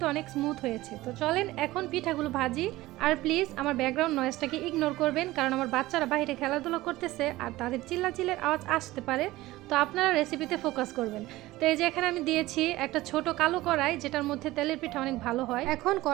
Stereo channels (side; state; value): left; quieter; 17.8 dB